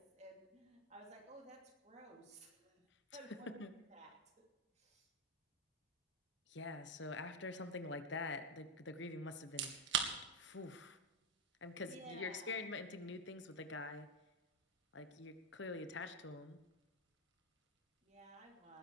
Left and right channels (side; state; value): both; normal; correlation 0.08